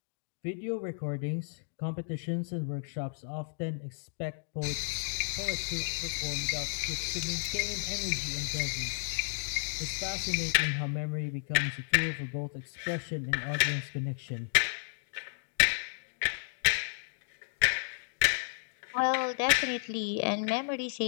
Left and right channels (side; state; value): right; silent; digital silence